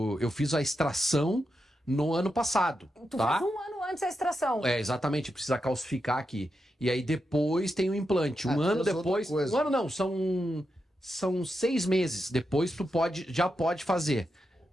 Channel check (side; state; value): both; normal; correlation 0.86